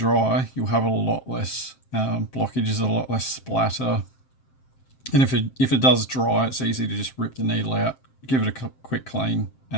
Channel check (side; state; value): right; late; 7.6 ms